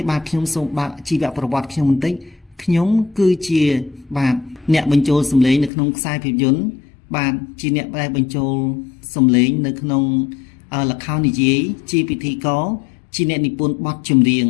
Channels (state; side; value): drops out; right; at 5.7 s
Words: បាទខ្ញុំសូមបើកជីវប្រវត្តិខ្ញុំបន្តិចខ្ញុំគឺជាបាទអ្នកបញ្ចូលសំឡេងនៅក្នុងខ្សែភាពយន្តបាទជាអ្នកដែលបញ្ចូលសំឡេងនៅក្នុងល្ខោននិយាយជាពិធីករជាអ្នកនិពន្ធបទចម្រៀង